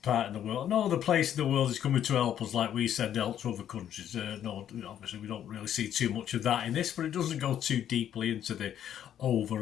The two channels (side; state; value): right; quieter; 10.2 dB